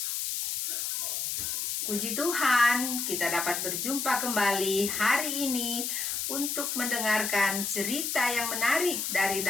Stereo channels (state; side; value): noise; left; hiss, 2 dB below the sound